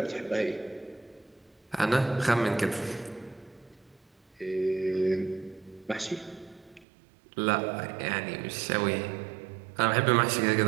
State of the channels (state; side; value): drops out; left; at 6.9 s